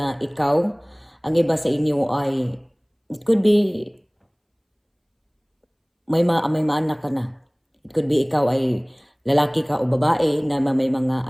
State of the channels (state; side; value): identical; both; correlation 1.00